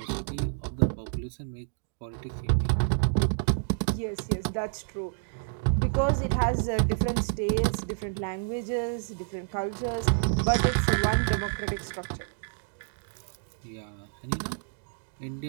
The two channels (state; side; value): silent; left; digital silence